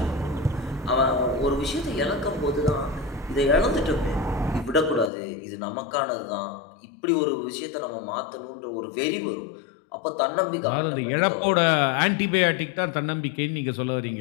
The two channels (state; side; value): drops out; right; at 5.1 s